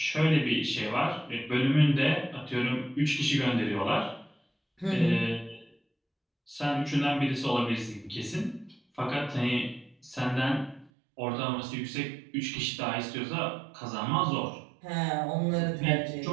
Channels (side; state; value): left; drops out; at 10.9 s